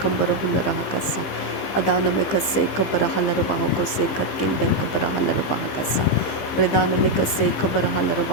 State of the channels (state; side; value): late; right; 15 ms